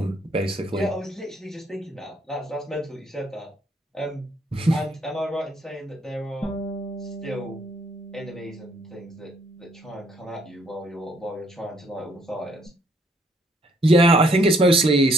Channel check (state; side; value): normal; both; correlation 0.67